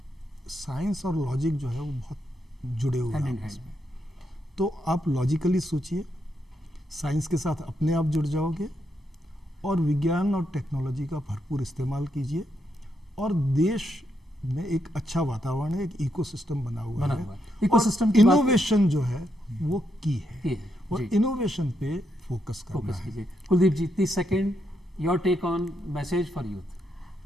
साइंस और लॉजिक जो है वो बहुत जुड़े हुए हैं आपस में। तो आप लॉजिकली सोचिए, साइंस के साथ अपने आप जुड़ जाओगे और विज्ञान और टेक्नोलॉजी का भरपूर इस्तेमाल कीजिए और देश में एक अच्छा वातावरण है, एक इकोसिस्टम बना हुआ है। इकोसिस्टम इनोवेशन जो है वो की है और इनोवेशन पे फोकस करना है। Kuldeep ji 30 second, your take on message for youth.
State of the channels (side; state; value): both; normal; correlation 0.80